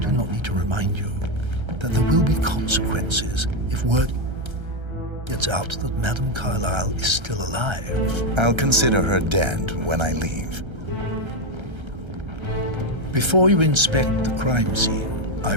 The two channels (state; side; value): late; left; 1.3 ms